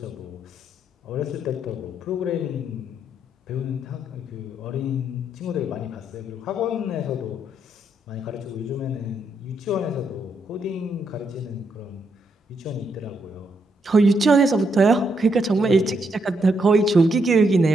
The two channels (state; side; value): normal; both; correlation 0.77